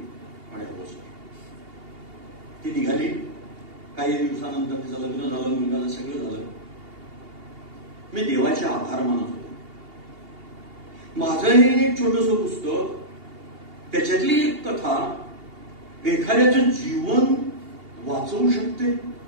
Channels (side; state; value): left; late; 2.8 ms